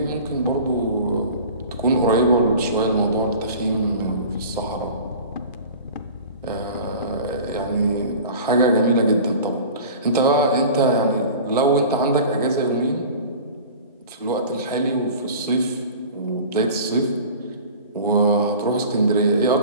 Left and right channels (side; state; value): both; inverted; correlation -0.40